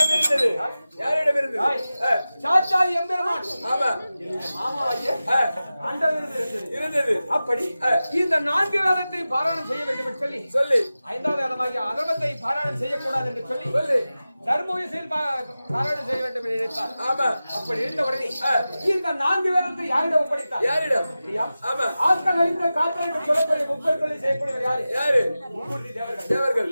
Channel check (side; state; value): both; inverted; correlation -0.95